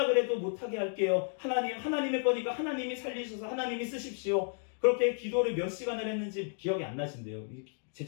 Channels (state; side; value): silent; right; 56 dB below the other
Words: 그래도 못하게 할게요. 하나님의 거니까 하나님이 살리셔서 하나님이 쓰십시오. 그렇게 기도를 몇 시간을 했는지 기억이 안 나신대요.